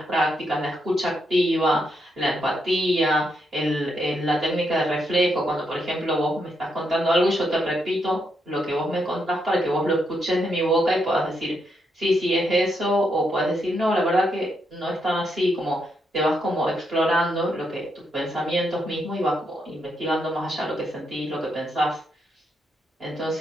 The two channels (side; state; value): both; normal; correlation 0.80